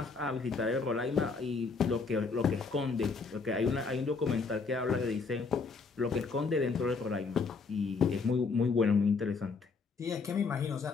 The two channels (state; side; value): quieter; right; 4.6 dB